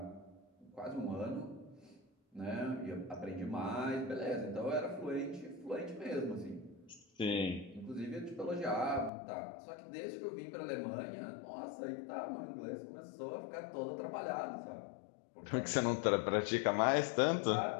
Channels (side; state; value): right; drops out; at 9.1 s